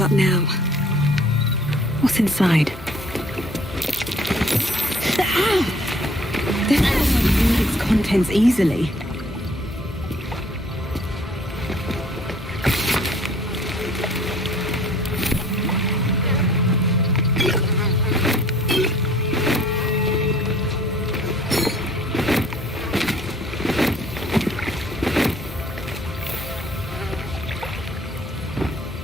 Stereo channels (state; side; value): normal; both; correlation 0.56